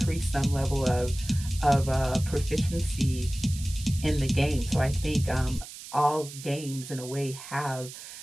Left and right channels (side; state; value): right; noise; hiss, 13 dB below the sound